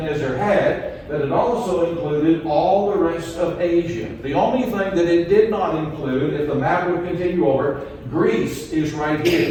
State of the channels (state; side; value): identical; both; correlation 1.00